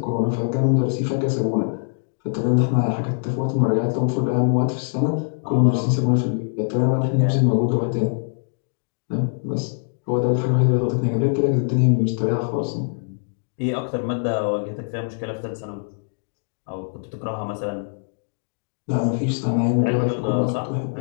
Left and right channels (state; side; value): silent; right; digital silence